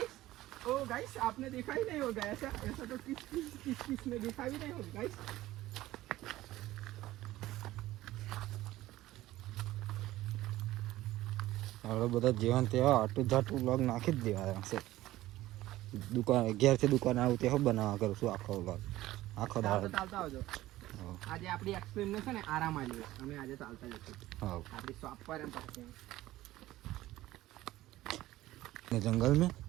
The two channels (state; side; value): quieter; left; 16.0 dB